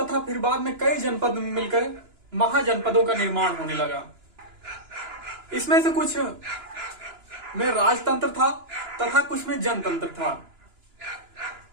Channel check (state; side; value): late; left; 2.9 ms